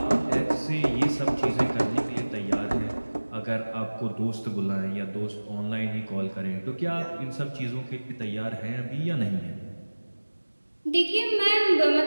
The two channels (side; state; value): both; inverted; correlation -1.00